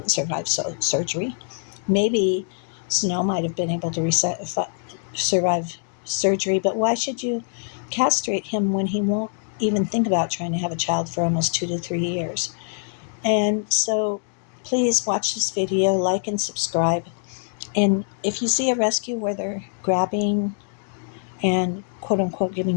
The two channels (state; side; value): silent; right; 57 dB below the other